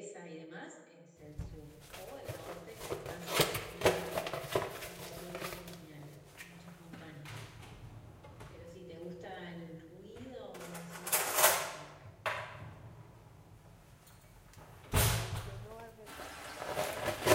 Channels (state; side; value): identical; both; correlation 1.00